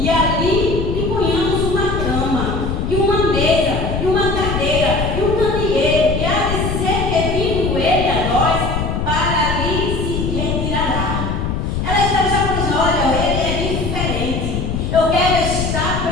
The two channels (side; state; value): left; noise; rumble, 2 dB below the sound